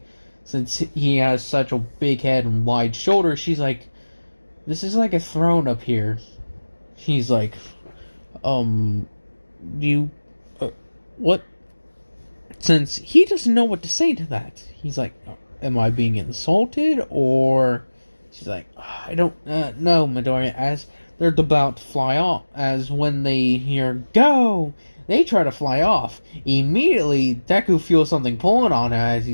since he has such a big head and wide shoulders. She's like, this is like a throne up here. He's like, what? Since he doesn't know what to say to that, he's like, am I being insulted? Or she's like, I don't know, Midoriya. As they're about to fly off, as when they hear go, they try to fly off. Immediately, Deku feels something pulling on him. As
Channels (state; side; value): inverted; both; correlation -1.00